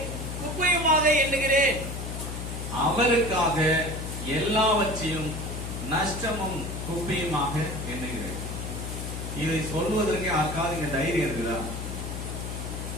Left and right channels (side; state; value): left; noise; hum, 6 dB below the sound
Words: குப்பையுமாக எண்ணுகிறேன். அவருக்காக எல்லாவற்றையும் நஷ்டமும் குப்பையுமாக எண்ணுகிறேன். இதை சொல்வதற்கு யாருக்காவது இங்க தைரியம் இருக்குதா?